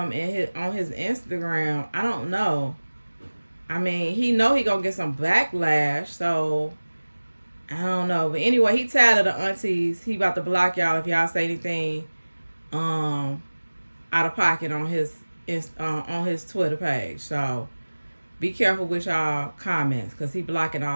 on his Instagram, I don't know. I mean, he know he gonna get some backlash, so I don't know. But anyway, he tired of the aunties. He about to block y'all if y'all say anything out of pocket on his Twitter page. So be careful with y'all comments, because he blocking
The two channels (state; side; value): inverted; both; correlation -1.00